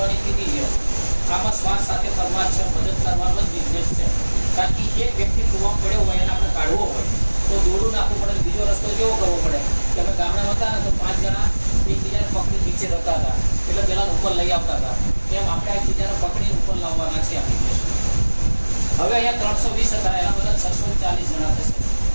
કીધી છે. આમાં શ્વાસ સાથે કરવા છે, મદદ કરવાનો જ બિઝનેસ છે. કારણ કે એક વ્યક્તિ કૂવામાં પડ્યો હોય એને આપણે કાઢવો હોય તો દોડું નાખવું પડે. બીજો રસ્તો કેવો કરવો પડે કે અમે ગામડા હતા ને તો 5 જણા એકબીજાને પકડી નીચે રહેતા હતા એટલે પેલા ઉપર લઈ આવતા હતા. તેમ આપણે એકબીજાને પકડીને ઉપર લાવવાના છે એપ્લિકેશન. હવે અહીંયા 320 હતા, એના બધા 640 જણા થશે,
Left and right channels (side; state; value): both; inverted; correlation -1.00